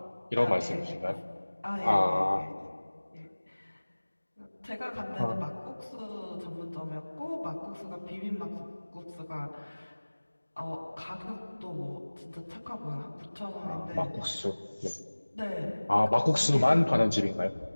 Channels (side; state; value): both; inverted; correlation -1.00